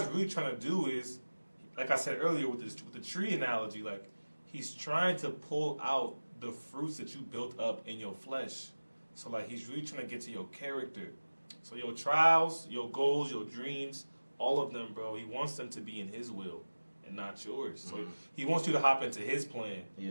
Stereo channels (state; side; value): inverted; both; correlation -1.00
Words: really trying to do is, like I said earlier with the tree analogy, like He's trying to pull out the fruits that you built up in your flesh. So like He's really trying to get to your character. So your trials, your goals, your dreams, all of them, bro, He wants them to be in His will and not yours. So He wants you to hop into His plan